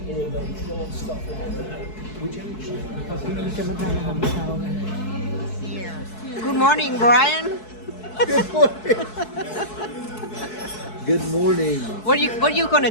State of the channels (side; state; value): right; late; 4.6 ms